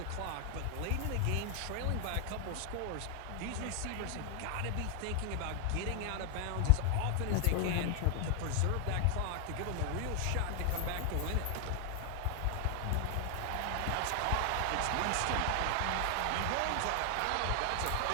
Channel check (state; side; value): different; both; correlation 0.00